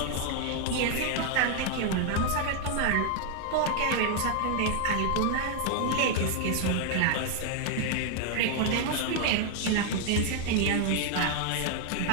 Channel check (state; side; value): different; both; correlation 0.00